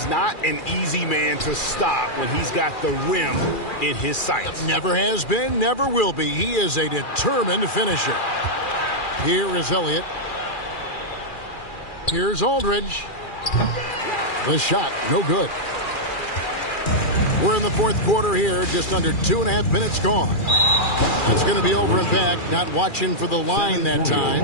not an easy man to stop when he's got the rim in his sights. Never has been, never will be. He is a determined finisher. Here is Elliott. Here's Aldridge. The shot, no good. We're in the 4th quarter here, just under 2.5 minutes gone. That's going to be over and back, not watching for the line that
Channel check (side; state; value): right; late; 2.4 ms